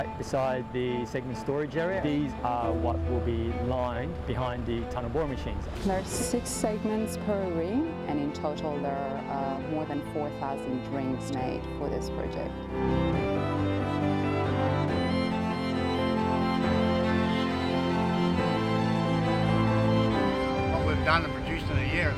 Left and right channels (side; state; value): both; identical; correlation 1.00